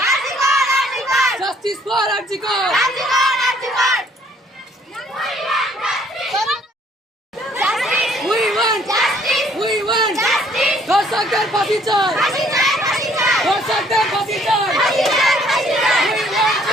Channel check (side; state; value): both; normal; correlation 0.62